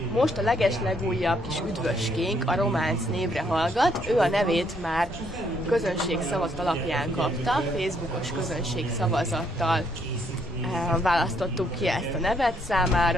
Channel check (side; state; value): both; normal; correlation 0.70